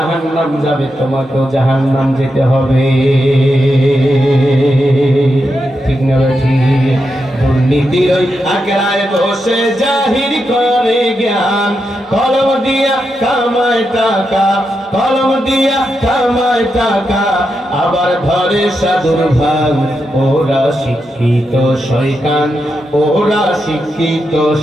যাবে, তোমাকেও জাহান্নাম যেতে হবে। ঠিক না ঠিক? দুর্নীতির ওই আখড়ায় বসে জাহির করে জ্ঞান, কলম দিয়া কামায় টাকা, কলম দিয়া কামায় টাকা, আবার ধরে সাধুর ভাগ। ওরা শিক্ষিত শয়তান, ওরা শিক্ষিত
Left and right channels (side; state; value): both; normal; correlation 0.85